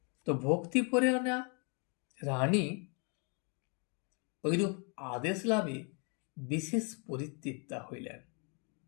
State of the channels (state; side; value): quieter; right; 36.0 dB